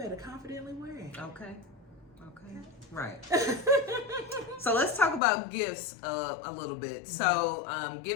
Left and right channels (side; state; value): right; drops out; at 5.2 s